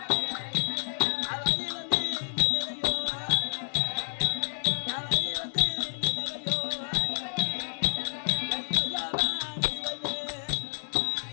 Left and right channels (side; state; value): right; silent; digital silence